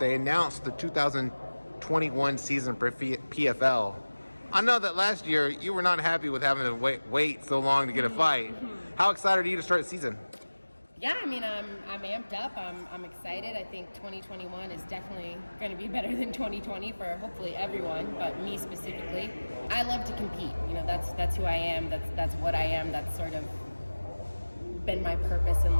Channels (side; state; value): both; inverted; correlation -1.00